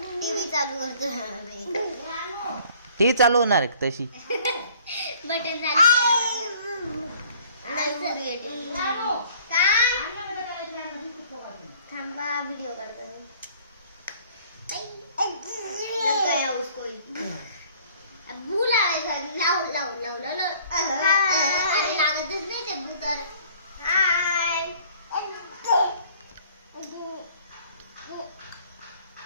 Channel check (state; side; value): inverted; both; correlation -0.55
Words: टी चालू होणार तशी. बटन थांबा व्हिडिओ करतो. लागतच नाही ते भूतर.